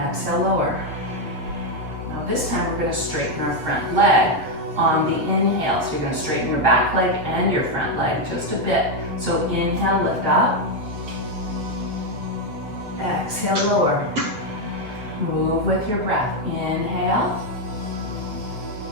lower. Now this time we're going to straighten our front leg on the inhale. So you're going to straighten your back leg and your front leg just a bit. So inhale, lift up, exhale, lower. Move with your breath. Inhale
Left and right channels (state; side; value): late; left; 7.6 ms